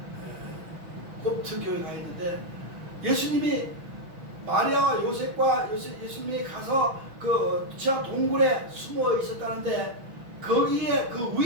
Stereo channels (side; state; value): left; late; 6.2 ms